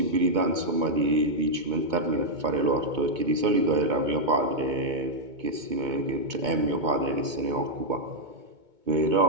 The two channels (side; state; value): left; late; 2.2 ms